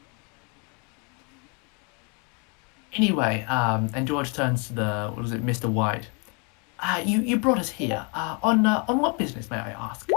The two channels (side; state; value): right; quieter; 33.8 dB